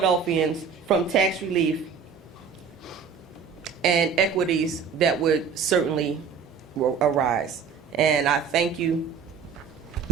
from tax relief and equities that would certainly arise. And I thank you.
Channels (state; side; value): quieter; left; 6.1 dB